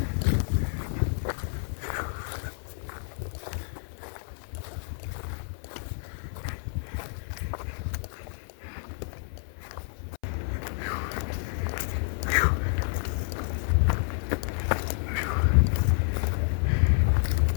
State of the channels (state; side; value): silent; right; 58 dB below the other